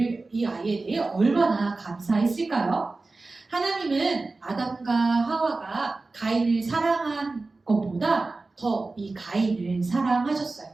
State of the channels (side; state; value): left; quieter; 3.5 dB